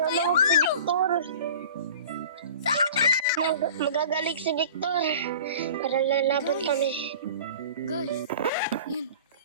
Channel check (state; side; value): inverted; both; correlation -0.41